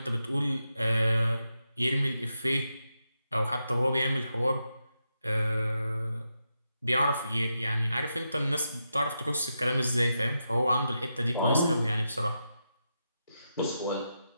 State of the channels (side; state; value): both; inverted; correlation -0.86